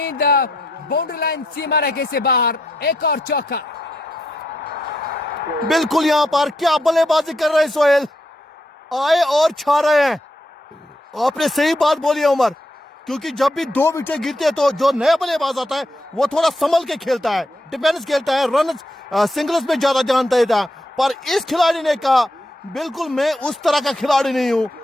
बाउंड्री लाइन सीमा रेखे से बाहर, एक और चौका। बिल्कुल यहां पर क्या बल्लेबाजी कर रहे हैं सोहेल, आए और छा रहे हैं। आपने सही बात बोली है उमर, क्योंकि जब भी 2 विकेट गिरते हैं तो जो नया बल्लेबाज आता है वो थोड़ा संभल के खेलता है, डिफेंस खेलता है, रन सिंगल्स में ज्यादा ध्यान देता है। पर इस खिलाड़ी ने कहा बिल्कुल मैं उस तरह का खिलाड़ी नहीं हूं,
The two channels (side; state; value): both; normal; correlation 0.80